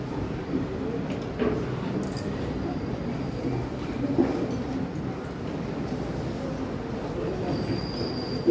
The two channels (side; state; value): both; identical; correlation 1.00